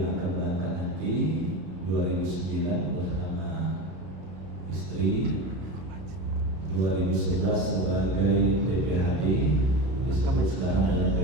akan berangkat nanti 2009 bersama istri, 2011 sebagai PPHD, disebut sekarang dengan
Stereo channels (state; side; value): late; left; 32 ms